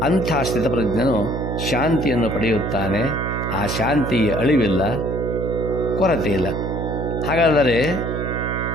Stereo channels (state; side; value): noise; right; hum, 2 dB below the sound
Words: ಅಂಥ ಸ್ಥಿತಪ್ರಜ್ಞನು ಶಾಂತಿಯನ್ನು ಪಡೆಯುತ್ತಾನೆ. ಆ ಶಾಂತಿಗೆ ಅಳಿವಿಲ್ಲ, ಕೊರತೆ ಇಲ್ಲ. ಹಾಗಾದರೆ